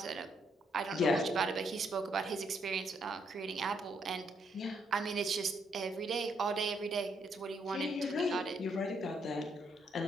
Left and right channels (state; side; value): normal; both; correlation 0.74